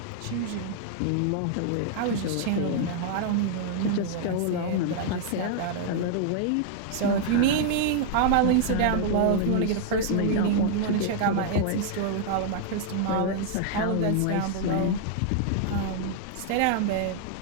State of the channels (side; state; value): both; different; correlation 0.00